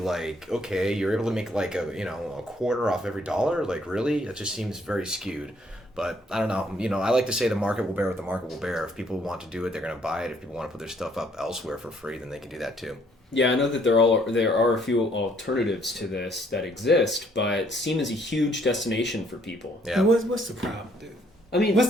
okay, you're able to make like a quarter off every dollar? Like, really? It just seems very skewed. But I don't know. I like to say the market will bear what the market will bear. If people want to do it, they're going to buy it. If people want to put their stuff up elsewhere for free, then they can do that too. yeah, I know that there are a few alternatives to this that exist, but Steam is a huge destination for people. Yeah. And what's the problem, dude? I mean,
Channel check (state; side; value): normal; both; correlation 0.66